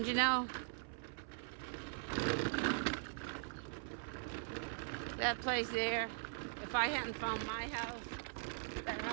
you know, that place there, if I hadn't found my house, that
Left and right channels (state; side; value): silent; left; 50 dB below the other